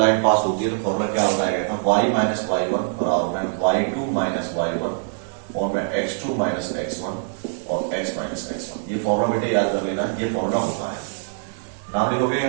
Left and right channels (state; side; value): silent; left; 63 dB below the other